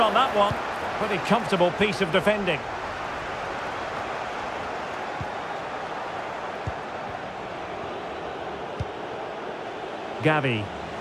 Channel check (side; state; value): both; identical; correlation 1.00